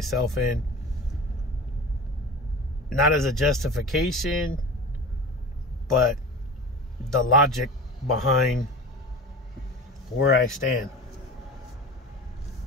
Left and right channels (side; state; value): both; normal; correlation 0.34